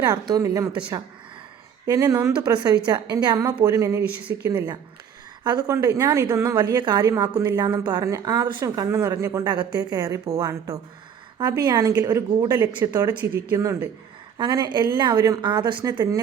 മുത്തശ്ശ. എന്നെ നൊന്തു പ്രസവിച്ച എൻ്റെ അമ്മ പോലും എന്നെ വിശ്വസിക്കുന്നില്ല. അതുകൊണ്ട് ഞാൻ ഇതൊന്നും വലിയ കാര്യമാക്കുന്നില്ല എന്നും പറഞ്ഞ് ആദർശം കണ്ണു നിറഞ്ഞുകൊണ്ട് അകത്തേക്ക് കയറി പോവാണ് കേട്ടോ. അഭിയാണെങ്കിൽ ഒരു ഗൂഢലക്ഷ്യത്തോടെ ചിരിക്കുന്നുണ്ട്. അങ്ങനെ എല്ലാവരും ആദർശിനെ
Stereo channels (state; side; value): quieter; left; 7.9 dB